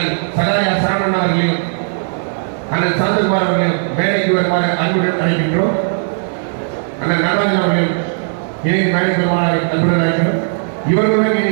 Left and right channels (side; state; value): left; silent; digital silence